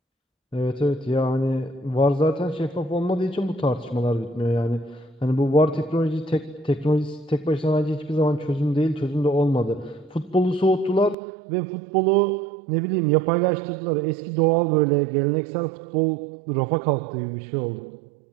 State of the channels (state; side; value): drops out; left; at 11.2 s